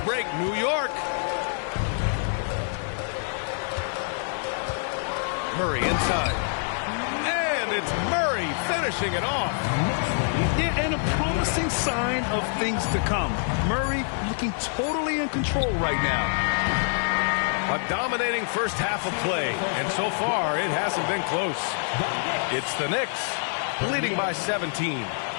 break, New York. Murray inside. And it's Murray finishing it off. Yeah, and a promising sign of things to come. Murray looking totally in control right now. A dominating first half of play, and so far it hasn't been close. It's the Knicks leading by 17.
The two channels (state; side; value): silent; right; 61 dB below the other